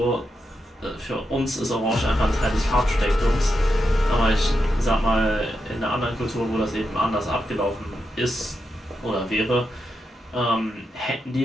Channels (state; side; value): normal; both; correlation 0.86